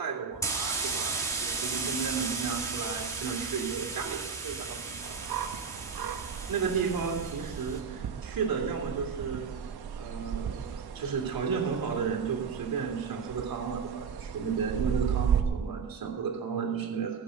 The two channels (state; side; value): quieter; left; 5.8 dB